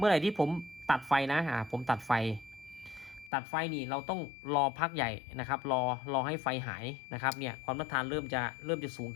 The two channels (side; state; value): right; drops out; at 3.3 s